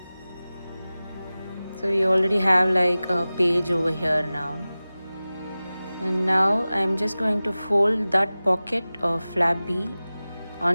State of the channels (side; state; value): both; inverted; correlation -0.97